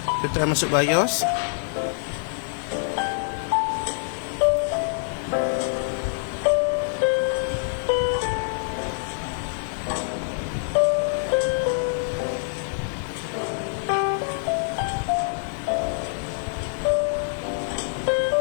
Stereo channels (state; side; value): silent; right; 62 dB below the other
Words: Kita try masuk BIOS.